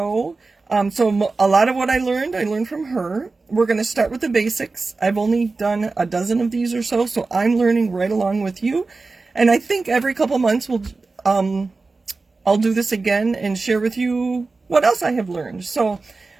So a lot of what I learned from her. We're going to start with the basics. I've only done a dozen of these or so, so I'm learning right along with you. And I think every couple months I'll do this again and share with you what else I have learned. So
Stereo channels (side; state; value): left; quieter; 3.8 dB